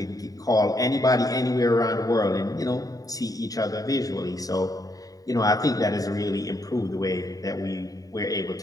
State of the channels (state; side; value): late; right; 0.18 ms